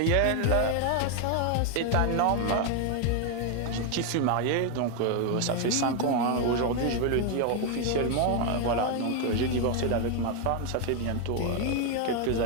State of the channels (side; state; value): both; different; correlation 0.01